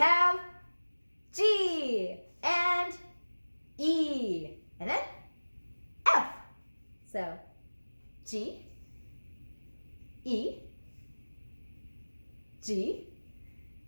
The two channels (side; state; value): both; inverted; correlation -1.00